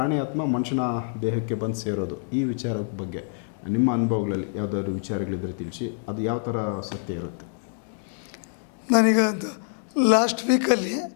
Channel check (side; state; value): right; silent; digital silence